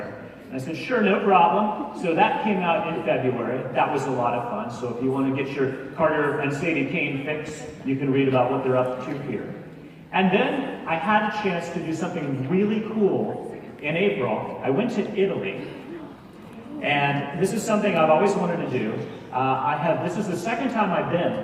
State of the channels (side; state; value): both; identical; correlation 1.00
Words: And I said, sure, no problem. So that came out in February. That was a lot of fun. So if you want to get your Carter and Sadie Kane fix, you can read about what they're up to here. And then I had a chance to do something really cool in April. I went to Italy. And this is something I've always wanted to do. This is the second time I've been,